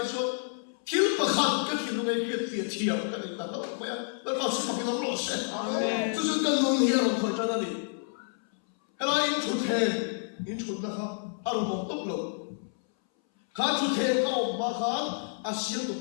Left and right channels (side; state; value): right; silent; 58 dB below the other